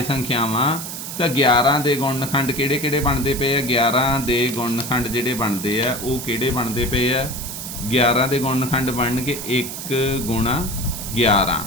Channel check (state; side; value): noise; right; hiss, 8 dB below the sound